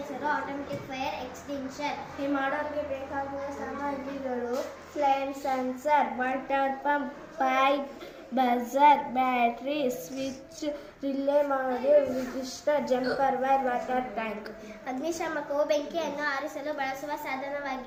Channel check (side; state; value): both; identical; correlation 1.00